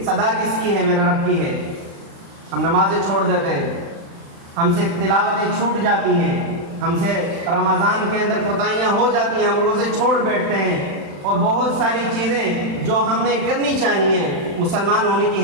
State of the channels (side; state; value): left; late; 35 ms